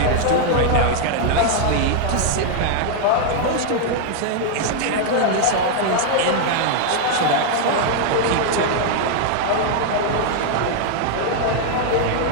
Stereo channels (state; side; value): different; both; correlation 0.00